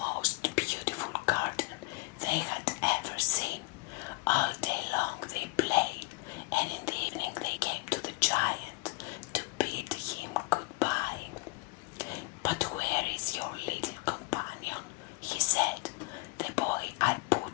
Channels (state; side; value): quieter; right; 25.7 dB